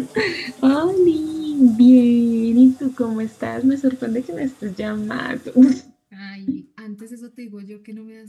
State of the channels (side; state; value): both; identical; correlation 1.00